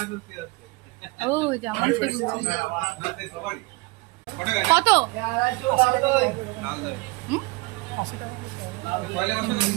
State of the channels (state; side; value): quieter; left; 25.0 dB